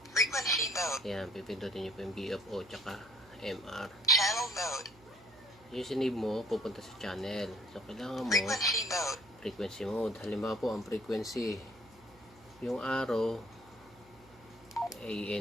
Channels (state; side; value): noise; right; hum, 25 dB below the sound